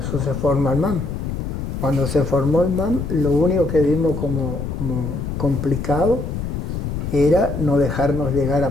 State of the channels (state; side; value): noise; left; rumble, 4 dB below the sound